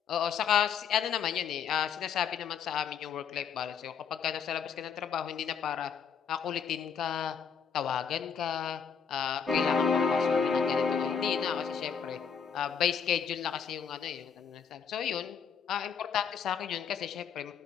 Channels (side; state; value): right; quieter; 7.0 dB